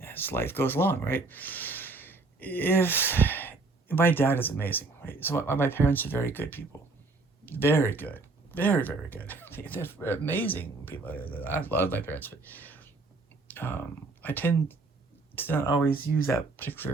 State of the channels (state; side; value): quieter; left; 3.6 dB